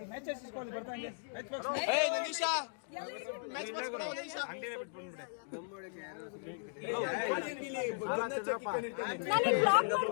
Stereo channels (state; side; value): silent; right; digital silence